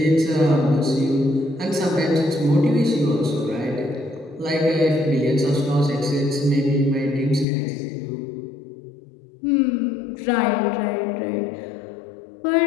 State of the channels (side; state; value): right; drops out; at 7.5 s